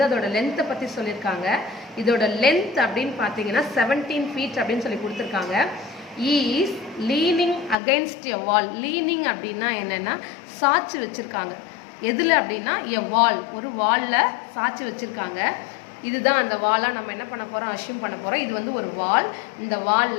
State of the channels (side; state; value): right; drops out; at 7.8 s